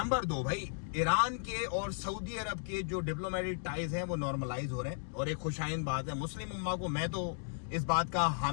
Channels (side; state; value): right; silent; digital silence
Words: 2 भाई, ईरान के और सऊदी अरब के जो डिप्लोमेटिक टाइज हैं वो नॉर्मलाइज हो रहे हैं, और एक खुशाइन बात है। मुस्लिम उम्मा को, मैं तो इस बात का